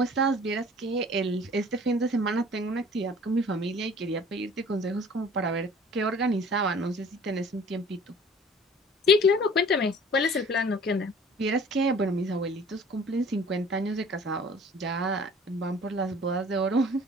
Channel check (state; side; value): normal; both; correlation 0.49